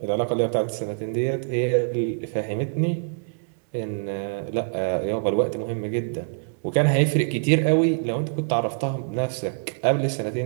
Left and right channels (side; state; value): left; silent; 62 dB below the other